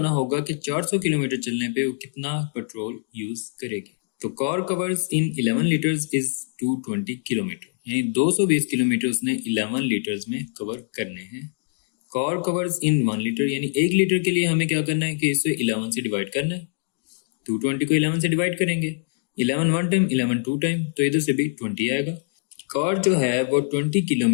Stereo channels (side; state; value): right; silent; digital silence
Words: होगा कि 400 किलोमीटर चलने पे वो कितना पेट्रोल यूज करेगी। तो car covers in 11 litres is 220 kilometre, यानी 220 किलोमीटर उसने 11 लीटर्स में कवर करने हैं। कार कवर्स इन 1 लीटर, यानी 1 लीटर के लिए हमें क्या करना है कि इसे 11 से डिवाइड करना है। 220 को 11 से डिवाइड करेंगे, 11 1 टाइम, 11 2 टाइम, तो इधर से भी 20 आएगा। कार जो है वो 20